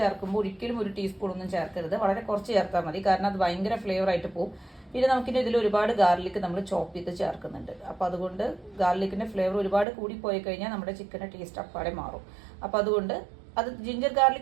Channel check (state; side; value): drops out; left; at 9.9 s